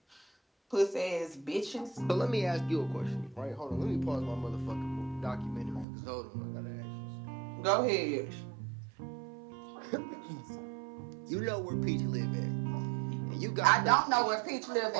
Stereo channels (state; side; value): drops out; left; at 5.9 s